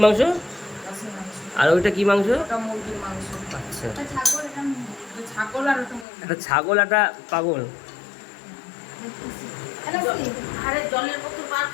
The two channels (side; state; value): right; drops out; at 6.1 s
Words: মাংস? আর ওইটা কি মাংস? ওটা মুরগির মাংস। আচ্ছা, এটা ছাগল আর ওটা মুরগি। একটা ছাগল একটা পাগল। আরে জলের বোতল বার